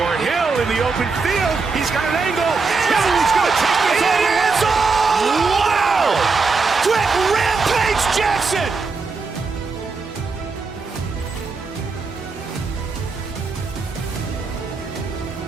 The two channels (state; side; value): quieter; left; 4.4 dB